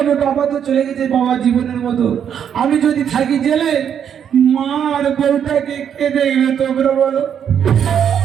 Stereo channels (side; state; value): left; quieter; 8.5 dB